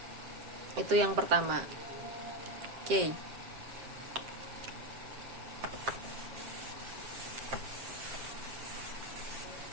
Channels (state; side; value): late; left; 7.6 ms